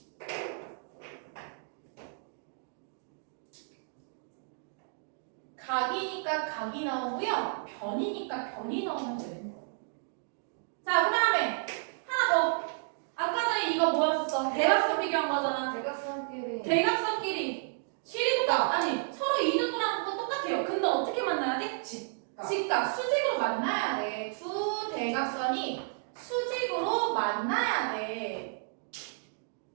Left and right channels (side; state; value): left; silent; digital silence